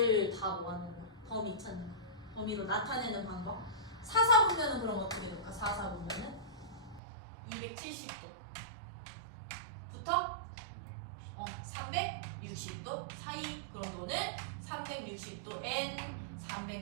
다 모아놓는 거. 범위 찾는 거. 범위로 나타내는 방법. 4, 4분면은 그럼 어떻게 될까? 4, 4분면은 270도 부터 360도 사이. 그럼 너는 360도 n,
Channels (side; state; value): left; drops out; at 7.0 s